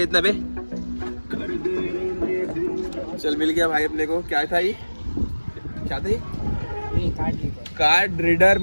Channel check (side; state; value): both; inverted; correlation -1.00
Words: इतना पे। चल मिल गया भाई अपने को। क्या था ये, क्या था ये? कार्ड रीडर